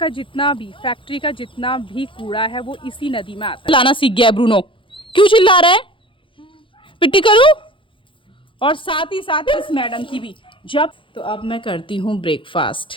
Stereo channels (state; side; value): late; right; 0.25 ms